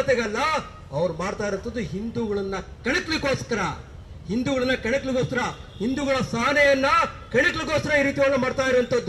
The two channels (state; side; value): identical; both; correlation 1.00